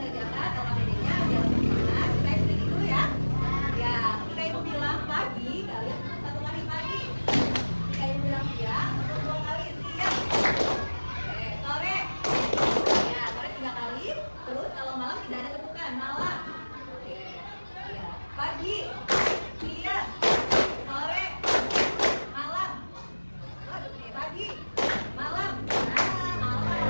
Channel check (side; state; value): both; inverted; correlation -1.00